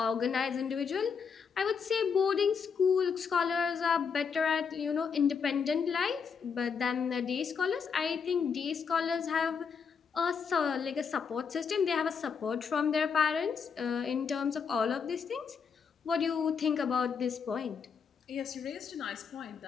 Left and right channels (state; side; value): quieter; right; 6.1 dB